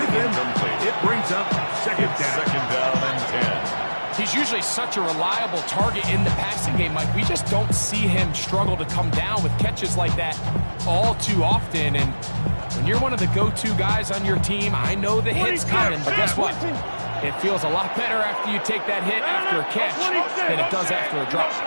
with him. It brings up second down. Second down and 10. He's usually such a reliable target in the passing game, Mike. We just don't see him struggle to come down with catches like that all too often. And when you're one of the go-to guys on your team, I know the hit's coming, but guess what? It feels a lot better after you take that hit after a catch than it does after a drop.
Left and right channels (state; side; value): inverted; both; correlation -1.00